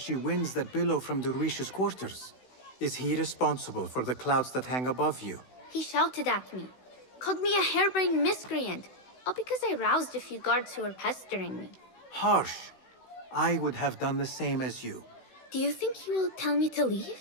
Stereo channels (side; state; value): right; late; 16 ms